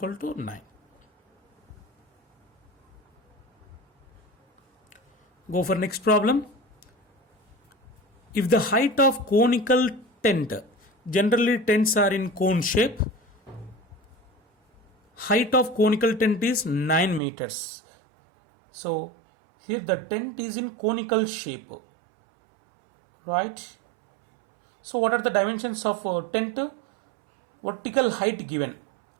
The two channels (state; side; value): drops out; left; at 17.2 s